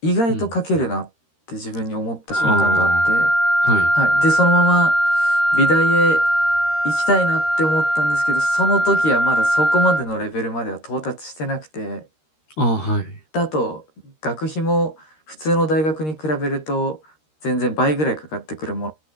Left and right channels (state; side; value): late; right; 13 ms